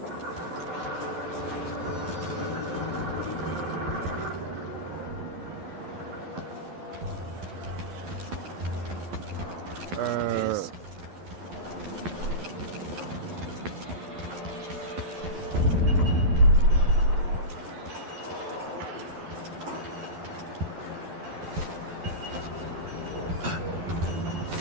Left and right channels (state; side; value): late; left; 11 ms